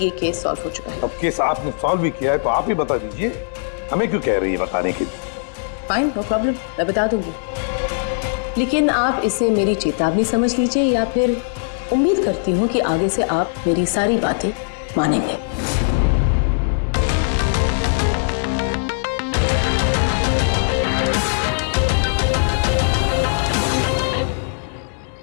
केस सॉल्व हो चुका है। अब केस आपने सॉल्व भी किया है तो आप ही बता दीजिए, हमें क्यों कह रही है बताने के लिए? फाइन, नो प्रॉब्लम, मैं बता दूंगी। लेकिन आप इसे मेरी चेतावनी समझ लीजिए, या फिर उम्मीद करती हूँ कि आगे से आप मेरी सारी बातें मानेंगे।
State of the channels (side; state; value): right; silent; 66 dB below the other